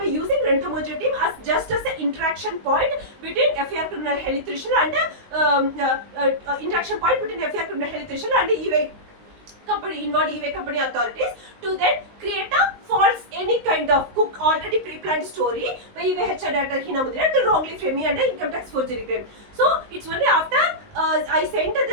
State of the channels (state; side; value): late; left; 19 ms